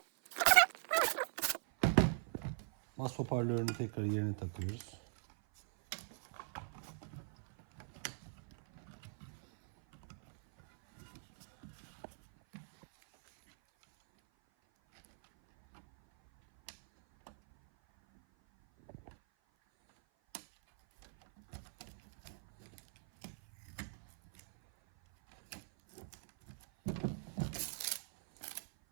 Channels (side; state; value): left; silent; 51 dB below the other